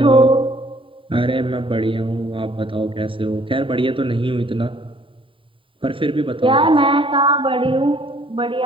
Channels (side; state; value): left; late; 0.25 ms